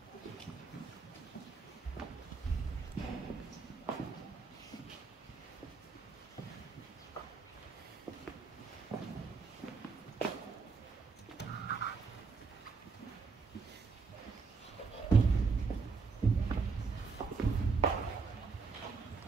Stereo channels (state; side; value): quieter; left; 4.8 dB